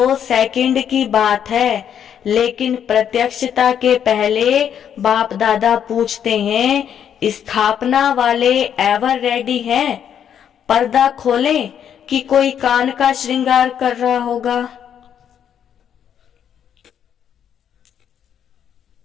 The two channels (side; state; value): right; quieter; 8.9 dB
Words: सेकंड की बात है, लेकिन प्रत्यक्षता के पहले बाप दादा पूछते हैं स्थापना वाले एवर रेडी हैं? पर्दा खोलें कि कोई कान का श्रृंगार कर रहा होगा।